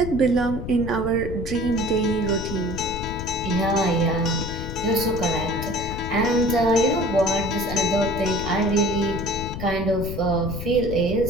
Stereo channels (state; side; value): noise; left; rumble, 7 dB below the sound